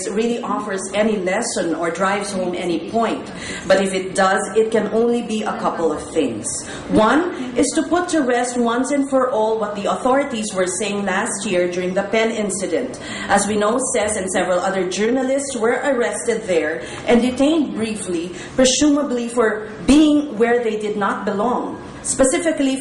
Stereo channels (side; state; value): both; identical; correlation 1.00